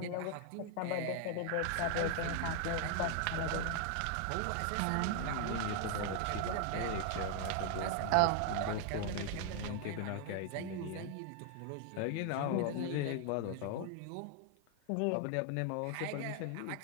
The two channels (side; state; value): both; different; correlation 0.00